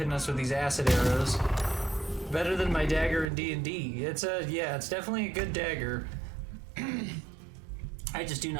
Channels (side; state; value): left; drops out; at 3.2 s